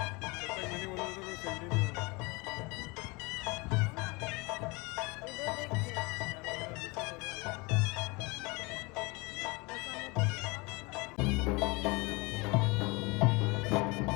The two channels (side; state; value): right; quieter; 26.5 dB